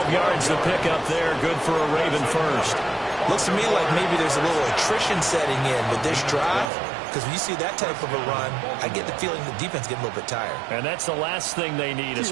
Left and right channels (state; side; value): drops out; left; at 6.7 s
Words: yards to pick up there. Good for a Raven first. Looks to me like maybe there's a little attrition setting in with this drive, because when you see that type of a run, I get the feeling the defense getting a little bit tired. And that's the last thing they need,